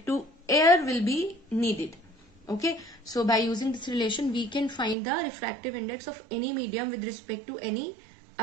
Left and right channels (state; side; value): drops out; left; at 5.0 s